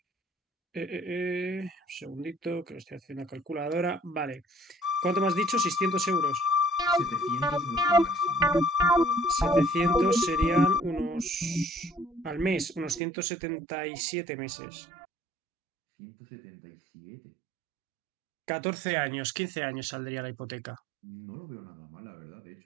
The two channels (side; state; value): left; drops out; at 13.0 s